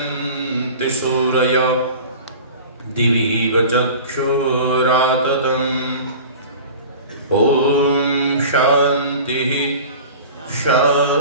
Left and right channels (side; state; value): both; inverted; correlation -0.38